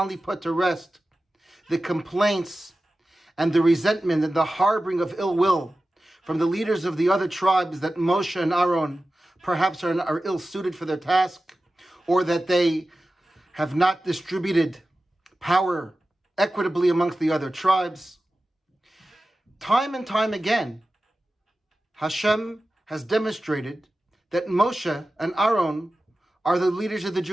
put to rest the complaints and the resentment and the harboring of ill will from the leaders of the other tribes that Moshe and Aaron perhaps are ill-suited for their task, or that they have not distributed power equitably amongst the other tribes. Time and time again, Hashem has demonstrated that Moshe and Aaron are the leaders of the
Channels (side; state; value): both; normal; correlation 0.94